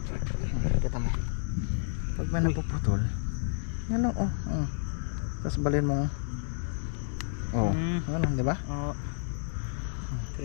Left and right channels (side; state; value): right; silent; digital silence